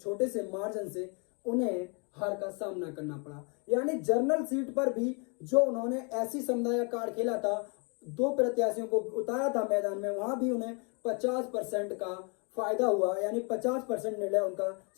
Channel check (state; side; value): quieter; right; 35.5 dB